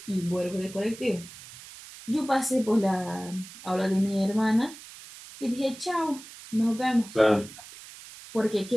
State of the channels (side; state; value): right; noise; hiss, 17 dB below the sound